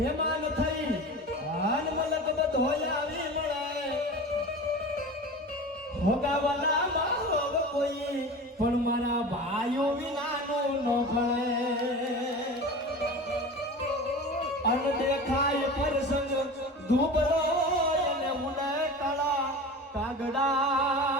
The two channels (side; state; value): both; normal; correlation 0.33